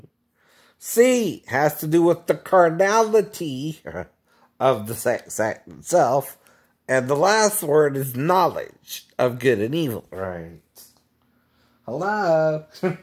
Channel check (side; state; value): both; identical; correlation 1.00